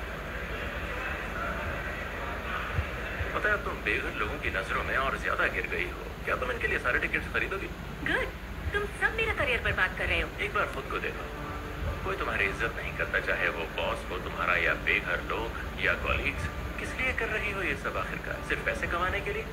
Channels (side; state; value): both; identical; correlation 1.00